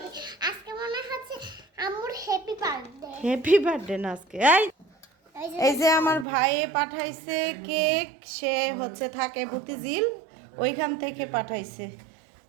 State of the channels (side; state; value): left; drops out; at 6.2 s